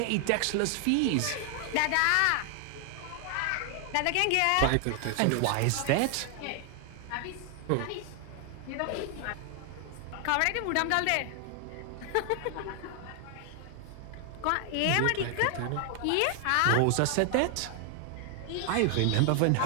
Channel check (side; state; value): both; different; correlation 0.00